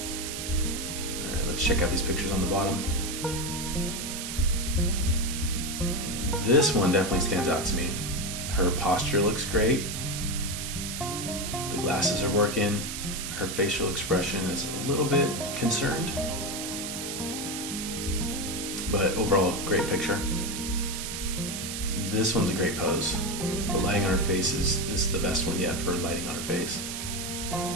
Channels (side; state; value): right; noise; hiss, 5 dB below the sound